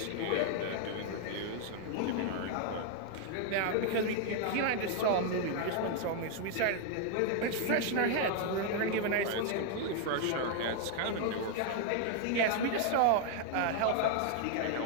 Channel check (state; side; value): different; both; correlation 0.00